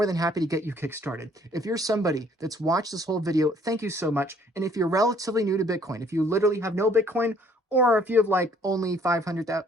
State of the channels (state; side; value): normal; both; correlation 0.60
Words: than happy to get you kickstarted. If you're somebody that's watched this whole video, thank you so much. And if you're relatively new to Bitcoin, if you literally have no Bitcoin, or if you have like only $500 or